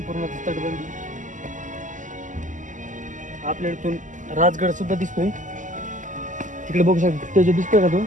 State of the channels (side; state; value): left; late; 0.37 ms